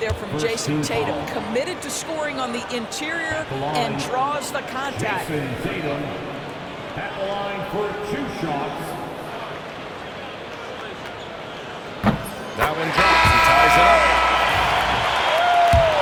from Jason Tatum. Committed to scoring on the interior and draws the contact. Jason Tatum at the line for 2 shots. That one drops. He ties it up.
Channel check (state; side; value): identical; both; correlation 1.00